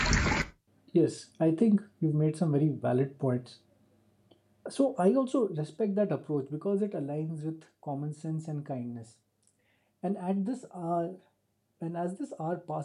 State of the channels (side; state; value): both; identical; correlation 1.00